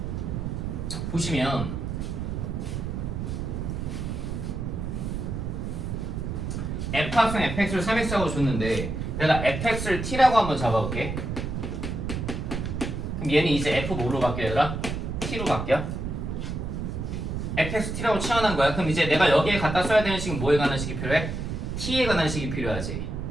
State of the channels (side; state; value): right; noise; rumble, 4 dB below the sound